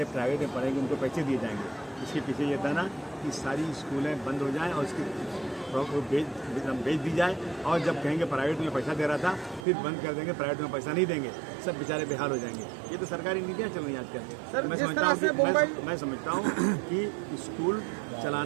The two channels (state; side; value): drops out; left; at 9.7 s